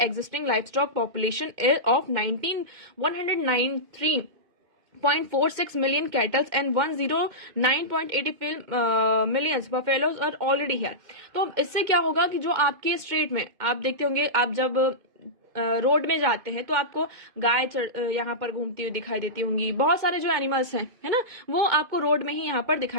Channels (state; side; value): late; left; 2.1 ms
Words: existing livestock population of 193.46 million cattle and 109.80 millions buffaloes are already here. तो इससे क्या होगा कि जो आपके स्ट्रेट में आप देखते होंगे, आप जब रोड में जाते हैं तो आपको गाय यहाँ पर घूमती हुई दिखाई देती होंगी, बहुत सारे जो एनिमल्स हैं है ना वो आपको रोड में ही यहाँ पर